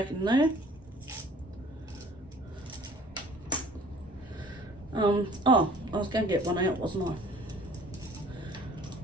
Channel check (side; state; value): both; normal; correlation 0.51